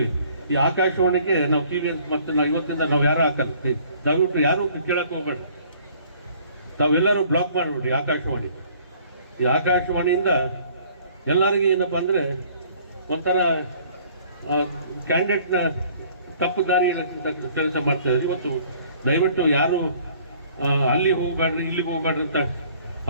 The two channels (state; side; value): inverted; both; correlation -0.56